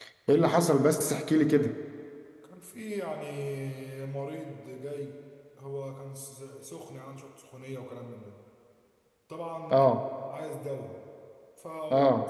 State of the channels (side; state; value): both; identical; correlation 1.00